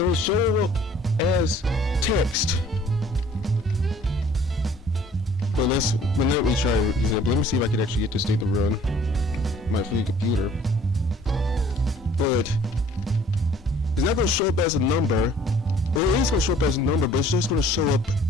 show up as text. But let me try an example. Let me see if I can actually get this thing to run my free computer. But it's not going to show up as a number. Well, it is going to show up as a number, but it's just going to show up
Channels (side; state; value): both; normal; correlation 0.55